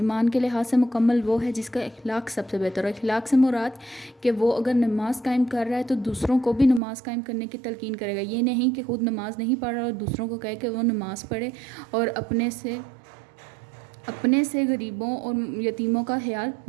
کے لحاظ سے مکمل وہ ہے جس کا اخلاق سب سے بہتر ہے۔ اخلاق سے مراد کہ وہ اگر نماز قائم کر رہا ہے تو دوسروں کو بھی نماز قائم کرنے کی تلقین کرے گا، یہ نہیں کہ خود نماز نہیں پڑھ رہا اور دوسروں کو کہے کہ وہ نماز پڑھے اور اپنے سے غریبوں اور یتیموں کا خیال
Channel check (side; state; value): left; drops out; at 6.8 s